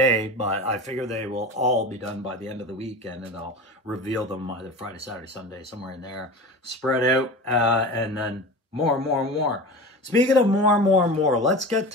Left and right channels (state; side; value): normal; both; correlation 0.31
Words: but I figure they will all be done by the end of the weekend, and I'll reveal them either Friday, Saturday, Sunday, somewhere in there, spread out, and then more. Speaking of more, let's get